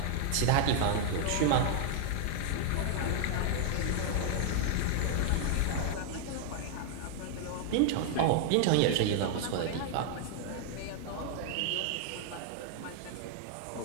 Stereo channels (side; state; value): both; different; correlation 0.00